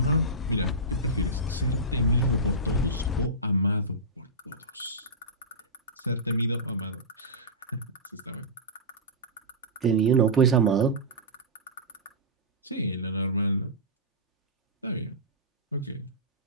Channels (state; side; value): normal; both; correlation -0.16